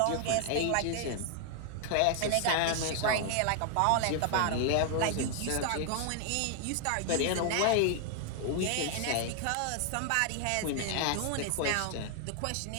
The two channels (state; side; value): different; both; correlation 0.00